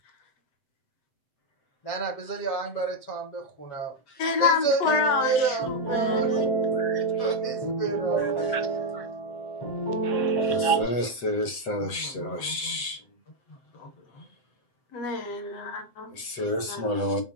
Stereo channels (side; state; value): right; late; 7.9 ms